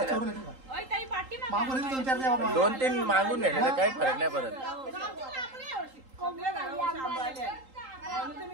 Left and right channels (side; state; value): left; late; 3.8 ms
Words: दोन तीन मागून नेलेलं काही फरक नाही पडत.